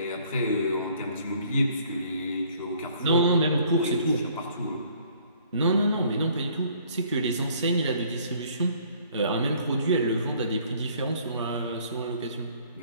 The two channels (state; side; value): inverted; both; correlation -0.59